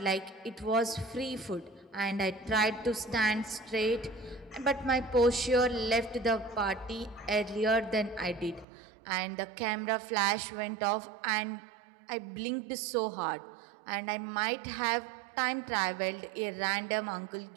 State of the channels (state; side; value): drops out; left; at 8.7 s